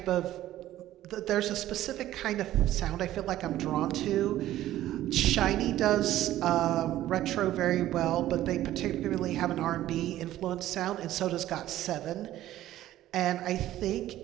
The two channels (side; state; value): left; quieter; 13.9 dB